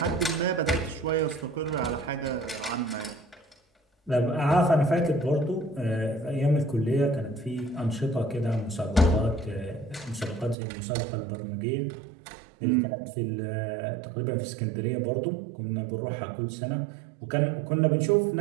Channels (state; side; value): drops out; left; at 10.6 s